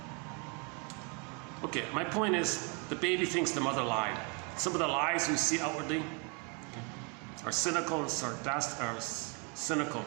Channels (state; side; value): quieter; left; 33.2 dB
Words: Okay, my point is the baby thinks the mother lied. Some of the lies we see outwardly are cynical and sarcastic, are cynical.